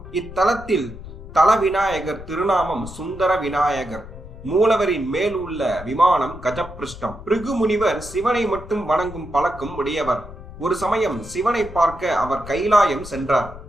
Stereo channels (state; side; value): noise; left; rumble, 14 dB below the sound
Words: இத்தலத்தில் தல விநாயகர் திருநாமம் சுந்தர விநாயகர். மூலவரின் மேல் உள்ள விமானம் கஜப்பிருஷ்டம். பிருகு முனிவர் சிவனை மட்டும் வணங்கும் பழக்கம் உடையவர். ஒரு சமயம் சிவனை பார்க்க அவர் கைலாயம் சென்றார்.